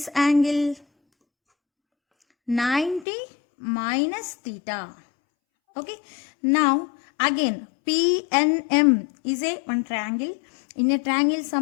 angle? 90 minus theta. Okay. Now again PNM is a one triangle. In a triangle,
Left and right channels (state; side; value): drops out; right; at 3.1 s